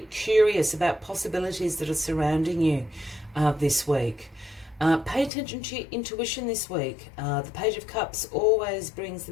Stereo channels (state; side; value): drops out; right; at 5.3 s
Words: curious about possibilities that are surrounding you this week. Pay attention to your intuition this week. The Page of Cups always brings the